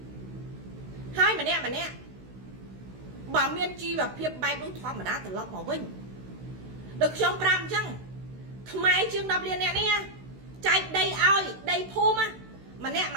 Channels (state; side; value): late; left; 16 ms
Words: ហើយម្នាក់បើមានជីវភាពបែបនោះធម្មតាត្រឡប់មកវិញដូចខ្ញុំប្រាប់អញ្ចឹងខ្មែរជាង10លានអ្នកនេះចែកដីឲ្យដីភូមិម្នាក់